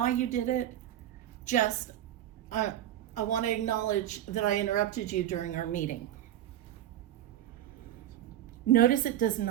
you did it. Just, I want to acknowledge that I interrupted you during our meeting. Notice it does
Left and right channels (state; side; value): quieter; left; 12.2 dB